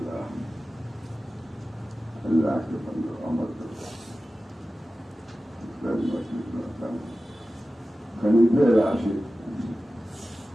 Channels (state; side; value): normal; both; correlation 0.95